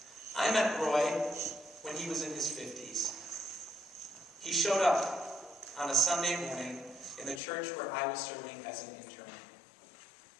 I met Roy when he was in his 50s. He showed up on a Sunday morning in the church where I was serving as an intern.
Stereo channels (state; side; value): drops out; right; at 7.4 s